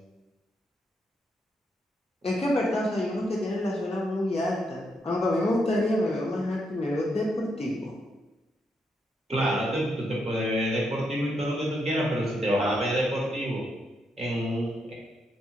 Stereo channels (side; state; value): both; normal; correlation 0.80